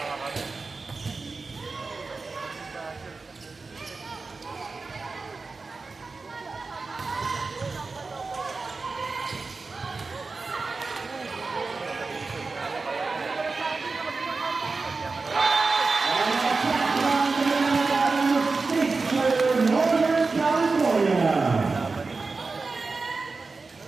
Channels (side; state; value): left; quieter; 4.0 dB